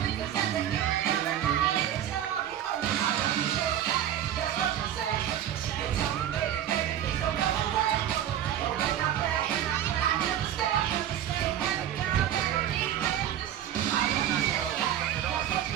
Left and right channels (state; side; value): quieter; left; 10.9 dB